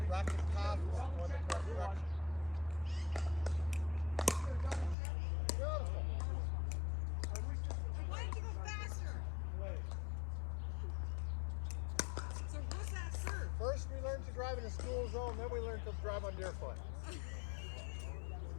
racket path is going the correct direction. Beautiful. I wanted to go faster. So what's that serve? First we learned to drive in a school zone, then we learned to drive on deer foot.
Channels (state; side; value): drops out; right; at 5.0 s